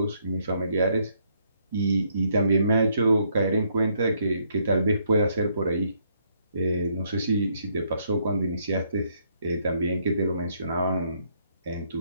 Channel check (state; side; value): inverted; both; correlation -0.72